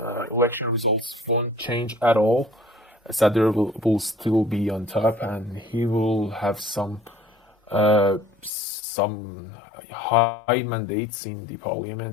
election results won't change at all. Sadr will still be on top, and he will have some high mandates in the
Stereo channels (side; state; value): right; drops out; at 8.5 s